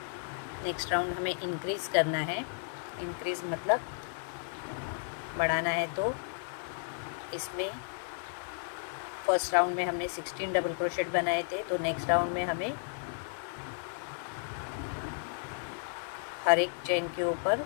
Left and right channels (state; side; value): silent; right; 56 dB below the other